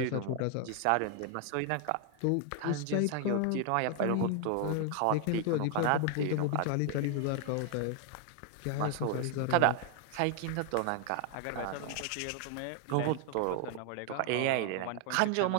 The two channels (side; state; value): both; different; correlation 0.00